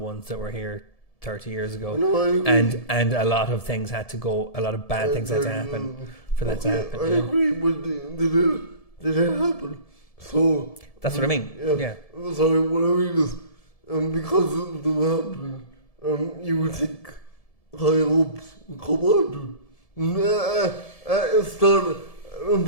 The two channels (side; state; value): right; late; 1.7 ms